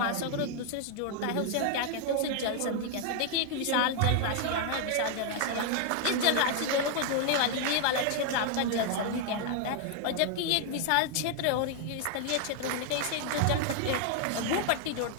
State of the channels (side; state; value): both; different; correlation 0.00